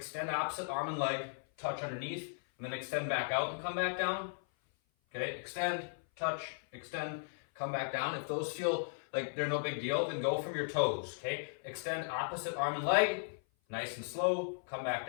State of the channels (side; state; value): right; silent; 53 dB below the other